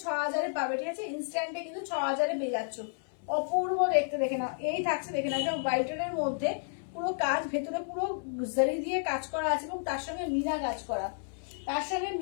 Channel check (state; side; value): silent; right; 57 dB below the other